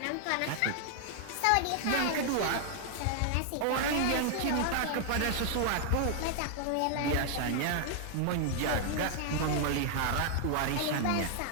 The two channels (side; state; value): both; different; correlation 0.00